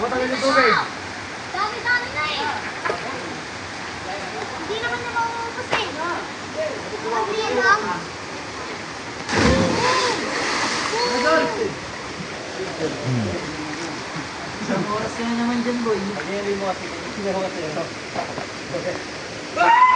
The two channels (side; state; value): both; identical; correlation 1.00